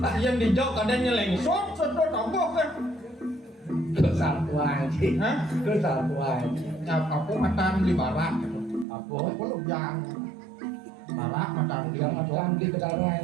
yang dijauh kadang nyeleng sot tambah kan. kesatuan sih. Hah? Kesatuan. Ya aku matan di barat. Apa? Aku lu yang barat matan di Yang macam di pedalaman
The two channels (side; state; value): left; drops out; at 8.8 s